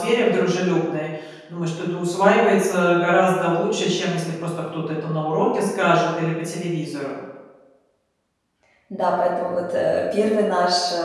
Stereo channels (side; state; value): both; identical; correlation 1.00